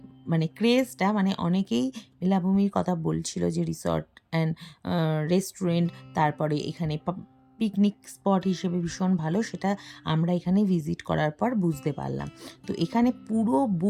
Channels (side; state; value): both; identical; correlation 1.00